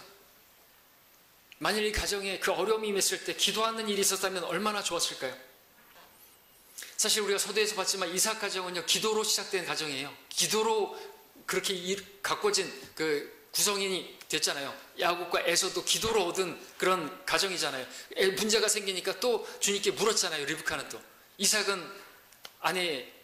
만일 이 가정에 그 어려움이 임했을 때 기도하는 일이 있었다면 얼마나 좋았을까요? 사실 우리가 서두에서 봤지만 이삭 가정은요, 기도로 시작된 가정이에요. 기도로 그렇게 가꿔진 그 구성인이 됐잖아요. 야곱과 에서도 기도로 얻은 그런 가정이잖아요. 문제가 생기니까 또 주님께 물었잖아요. 리브카는 또. 이삭은 아내의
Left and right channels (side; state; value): both; identical; correlation 1.00